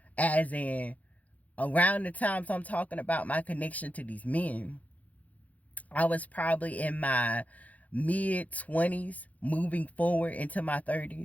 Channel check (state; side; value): late; right; 0.073 ms